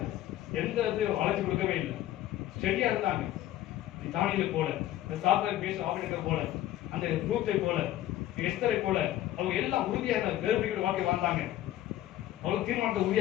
எந்த வளர்ச்சி கொடுக்கவே இல்லை. ஸ்டெடியா இருந்தாங்க. தானியலை போல, சாப்பிட பேச ஆபரேட்டரை போல, அந்த ரூத்தை போல, எஸ்தரை போல அவங்க எல்லாம் உறுதியாக வேறுபடுகிற வாழ்க்கை வாழ்ந்தாங்க. அவங்க தீர்மானத்தை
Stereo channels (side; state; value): right; quieter; 13.7 dB